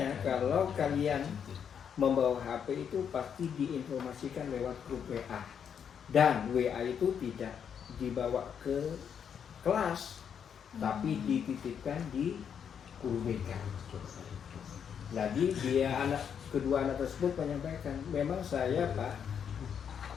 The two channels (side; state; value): right; quieter; 7.8 dB